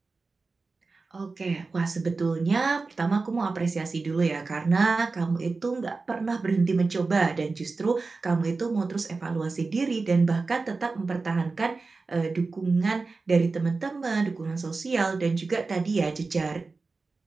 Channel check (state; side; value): quieter; left; 4.0 dB